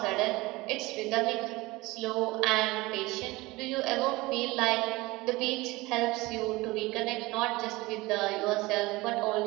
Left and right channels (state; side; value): quieter; left; 21.3 dB